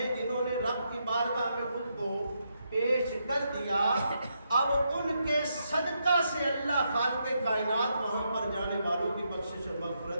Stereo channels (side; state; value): both; inverted; correlation -0.80